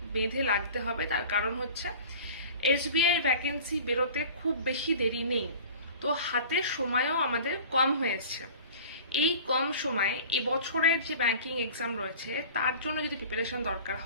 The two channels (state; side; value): inverted; both; correlation -0.40